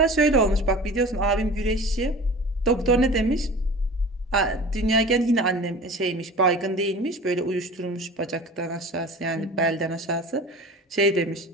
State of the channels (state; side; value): normal; both; correlation 0.39